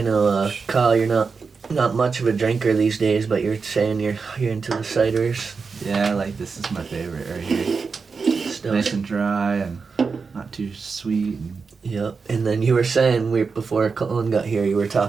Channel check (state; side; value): quieter; left; 5.0 dB